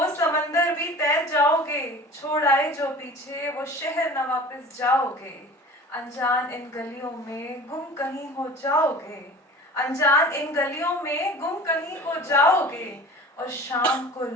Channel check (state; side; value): normal; both; correlation 0.41